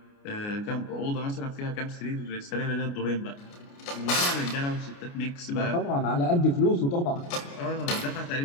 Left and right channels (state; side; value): late; right; 29 ms